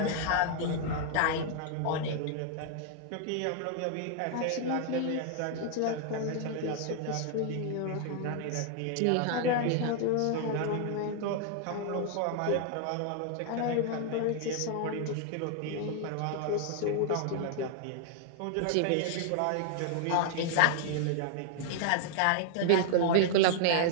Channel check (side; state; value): both; different; correlation 0.00